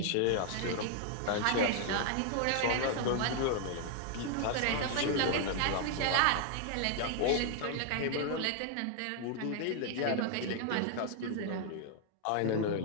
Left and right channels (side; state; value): both; different; correlation 0.00